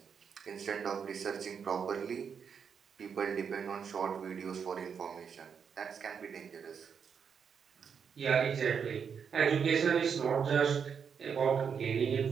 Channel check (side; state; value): left; quieter; 6.8 dB